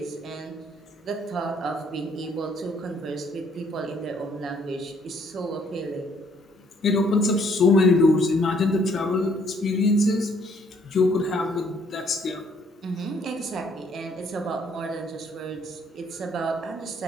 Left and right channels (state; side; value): normal; both; correlation 0.65